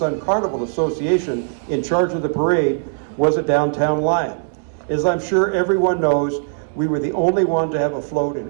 Carnival Association, in charge of the parade, was a Downtown Lion. As I'm sure everyone knows, we were the only one to have a float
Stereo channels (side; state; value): left; silent; 66 dB below the other